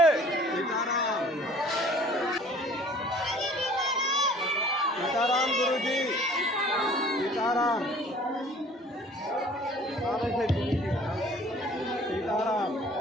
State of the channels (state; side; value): normal; both; correlation 0.51